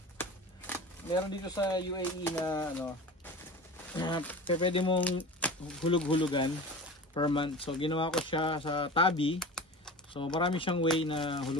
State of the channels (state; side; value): normal; both; correlation 0.34